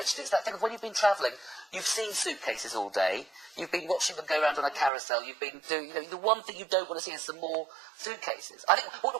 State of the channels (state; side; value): drops out; left; at 4.9 s